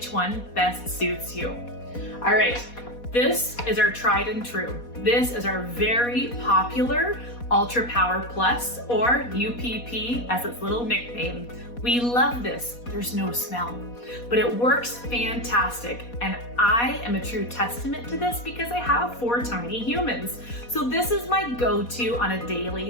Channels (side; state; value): right; late; 4.2 ms